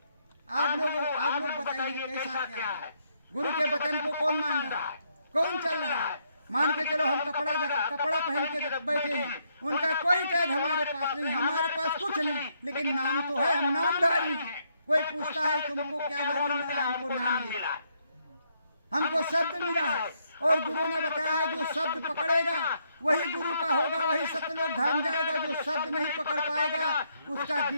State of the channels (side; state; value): both; inverted; correlation -0.74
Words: आप लोग बताइए कैसा क्या है? गुरु के वचन को कौन मान रहा है, कौन चल रहा है? मान के चलो हम कपड़ा पहन के बैठे हैं, उनका कोई टैग हमारे पास नहीं, हमारे पास कुछ नहीं, लेकिन नाम तो है, हम नामधारी हैं। कोई पूछता है तुमको क्या धर्म मिला? हमको नाम मिला, हमको शब्द मिला है। और गुरु ने बताया है जो शब्द पकड़ेगा वही गुरु का होगा, वही सतलोक धाम जाएगा। जो शब्द नहीं पकड़ पाएगा उसका